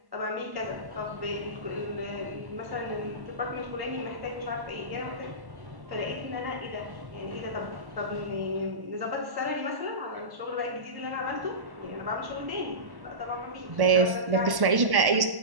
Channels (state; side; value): late; left; 1.1 ms